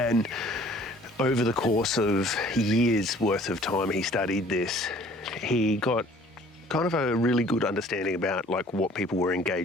over the course of years worth of time he studied this, he got kind of a really good understanding about like what people were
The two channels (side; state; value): both; normal; correlation 0.53